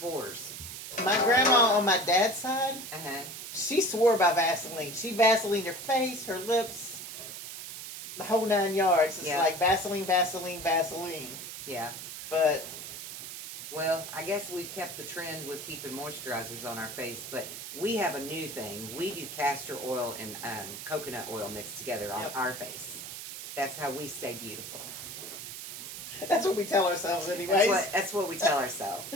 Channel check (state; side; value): noise; right; hiss, 9 dB below the sound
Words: My grandma on my dad's side, she swore by Vaseline. She Vaselined her face, her lips, the whole 9 yards. It's like Vaseline, Vaseline, Vaseline. Yeah. But well, I guess we've kept the trend with keeping moisturizers on our face, but we have a new thing. We do castor oil and coconut oil mixed together on our face. That's how we stay beautiful. That's what we tell ourselves anyways. That's what we tell ourselves.